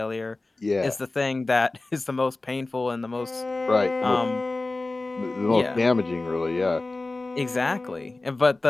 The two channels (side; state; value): right; quieter; 3.2 dB